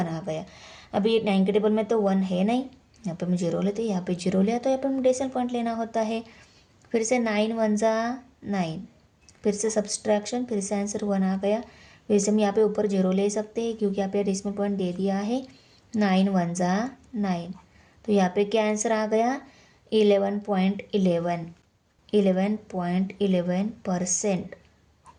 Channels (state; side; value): identical; both; correlation 1.00